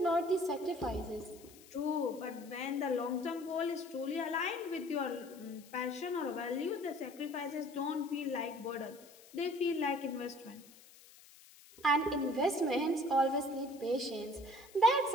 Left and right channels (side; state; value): left; noise; hiss, 22 dB below the sound